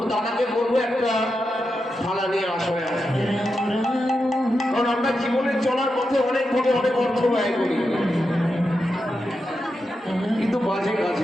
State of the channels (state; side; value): normal; both; correlation 0.88